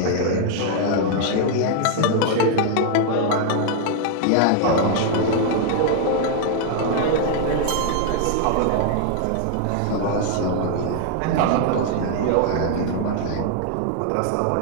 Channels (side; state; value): both; different; correlation 0.00